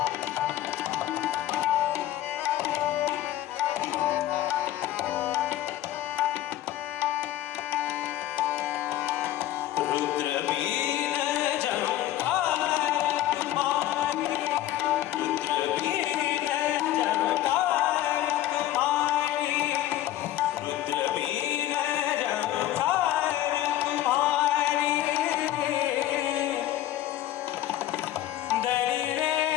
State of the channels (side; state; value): right; quieter; 13.4 dB